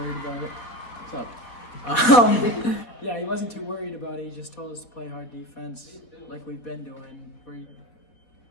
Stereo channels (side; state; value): right; late; 4.0 ms